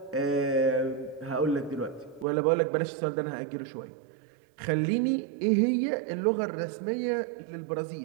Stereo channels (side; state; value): left; drops out; at 2.2 s